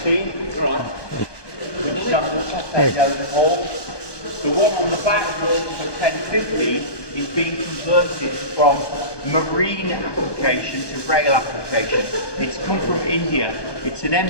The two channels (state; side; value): late; right; 1.2 ms